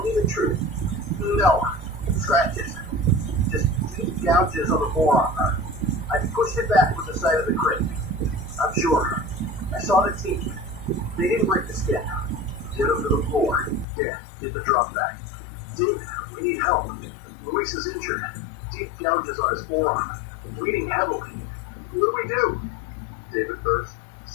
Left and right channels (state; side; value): drops out; right; at 13.9 s